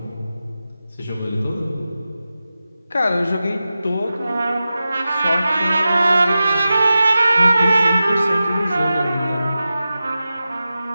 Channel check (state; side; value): inverted; both; correlation -0.93